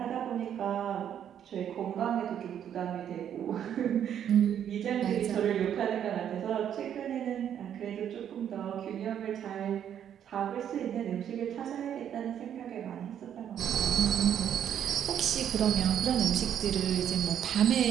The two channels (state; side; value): quieter; left; 9.5 dB